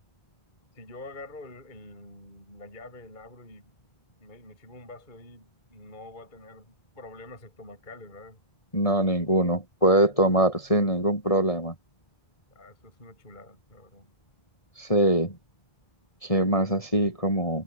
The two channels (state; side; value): late; right; 1.7 ms